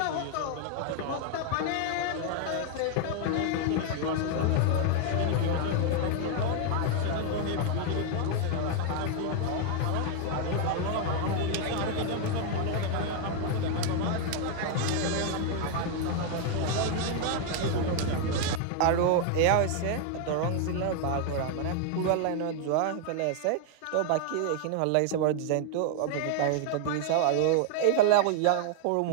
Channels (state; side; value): different; both; correlation 0.00